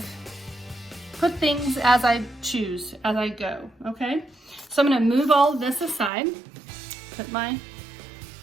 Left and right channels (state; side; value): drops out; left; at 6.1 s